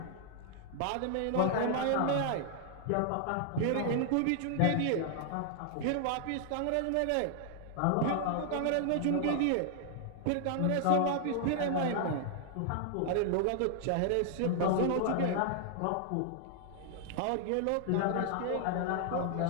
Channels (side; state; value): both; different; correlation 0.00